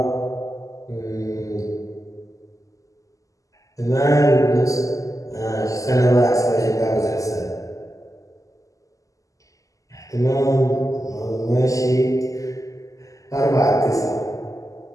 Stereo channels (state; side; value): late; right; 0.16 ms